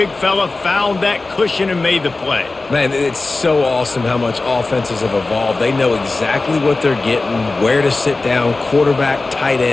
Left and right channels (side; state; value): right; quieter; 3.4 dB